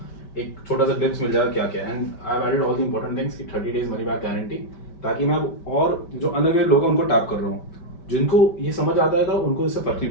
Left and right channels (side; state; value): right; late; 5.1 ms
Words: एक छोटा सा क्लिप्स मिल जाएगा क्या क्या। And I have added all the important things कि 30 days मनी बैक गारंटी, ताकि मैं अब और जो अनअवेयर लोग हैं उनको टैप कर रहा हूँ। जिनको ये समझ आता है तो उनको इससे फर्क नहीं